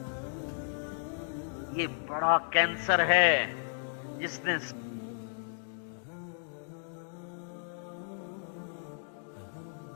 یہ بڑا کینسر ہے جس نے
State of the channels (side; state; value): right; silent; digital silence